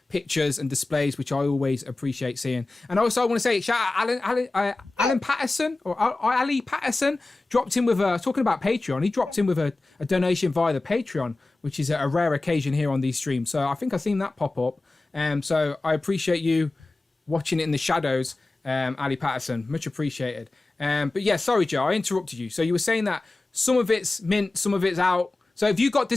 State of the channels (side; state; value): right; quieter; 3.1 dB